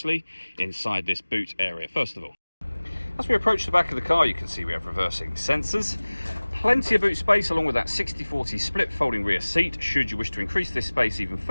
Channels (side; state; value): both; inverted; correlation -1.00